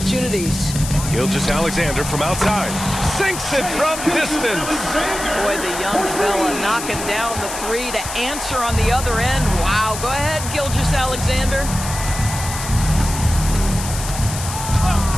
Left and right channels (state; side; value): noise; left; hiss, 8 dB below the sound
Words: Gilgeous-Alexander from outside. Sinks it from distance. Boy, the young fella knocking down the 3 to answer on the other end. Wow, go ahead, Gilgeous-Alexander.